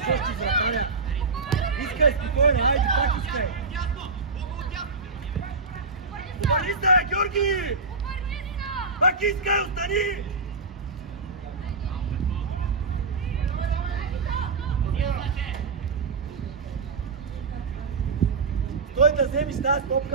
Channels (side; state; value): left; quieter; 4.2 dB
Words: още вратаря. Искай спокойно, айде, пак искай. Обърни се, бе, Георги! Пак искай, остани! Той да вземиш тази